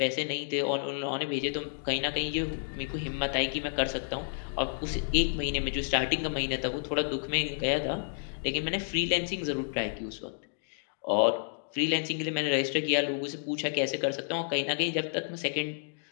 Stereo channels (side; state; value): right; silent; digital silence